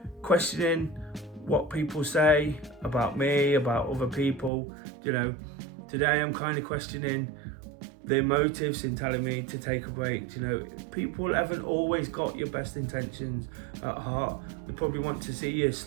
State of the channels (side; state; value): left; drops out; at 4.5 s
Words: questioning what people say about me, about other people, today I'm kind of questioning their motives in telling me to take a break. People haven't always got your best intentions at heart. They probably want to see you